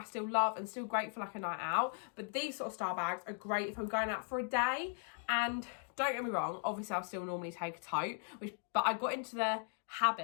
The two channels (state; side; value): silent; right; 52 dB below the other